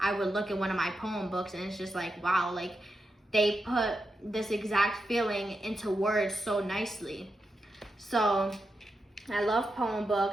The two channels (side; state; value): both; normal; correlation 0.87